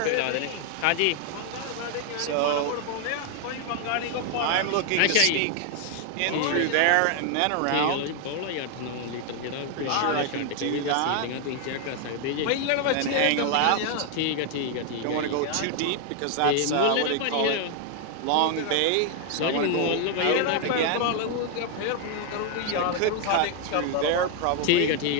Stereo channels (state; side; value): different; both; correlation 0.00